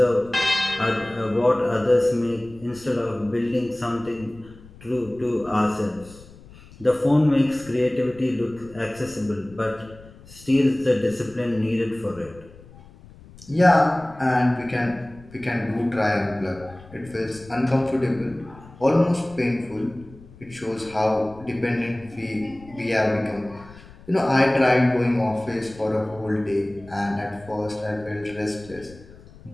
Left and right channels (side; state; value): left; noise; rumble, 21 dB below the sound